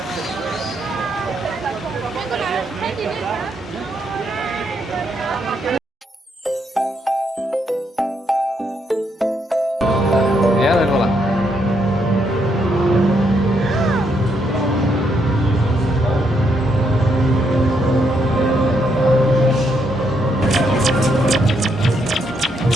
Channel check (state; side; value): normal; both; correlation 0.76